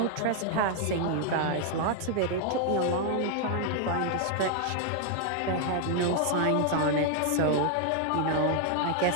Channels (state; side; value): different; both; correlation 0.00